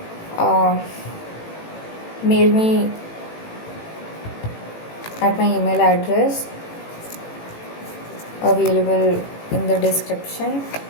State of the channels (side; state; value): right; late; 18 ms